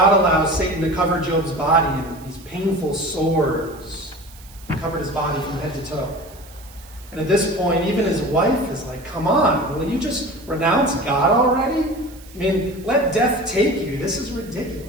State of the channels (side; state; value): right; noise; hiss, 22 dB below the sound